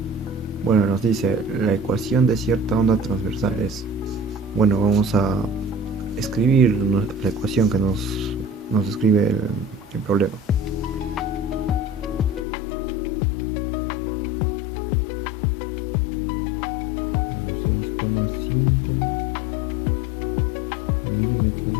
Bueno, nos dice la ecuación de cierta onda transversal es. Bueno, vamos a escribir la ecuación que nos describe el problema. Bueno, 6,5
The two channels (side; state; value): right; drops out; at 12.5 s